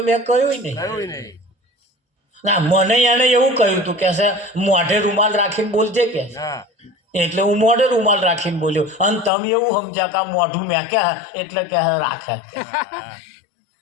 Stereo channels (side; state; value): right; drops out; at 9.3 s